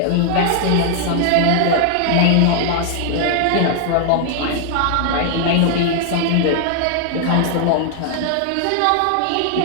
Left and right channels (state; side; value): different; both; correlation 0.00